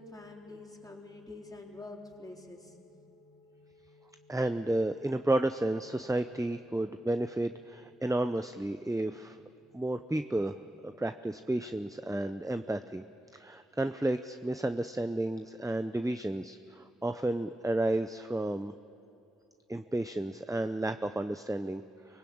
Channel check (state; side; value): normal; both; correlation 0.92